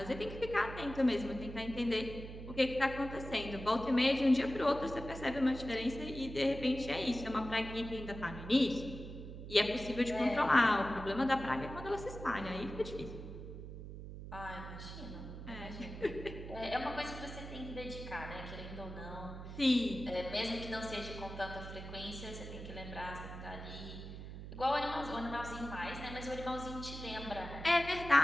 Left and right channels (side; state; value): right; noise; hum, 10 dB below the sound